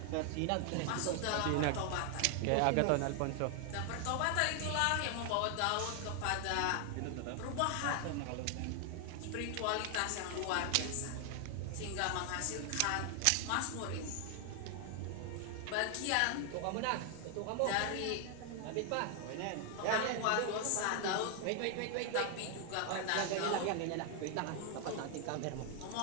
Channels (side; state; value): both; different; correlation 0.00